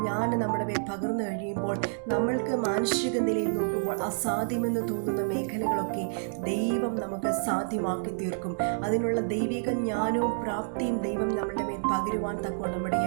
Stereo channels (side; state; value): left; silent; digital silence